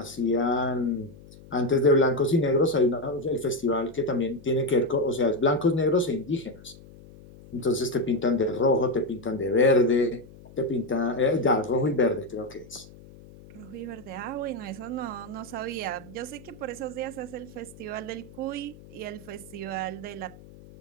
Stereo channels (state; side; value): noise; left; hum, 20 dB below the sound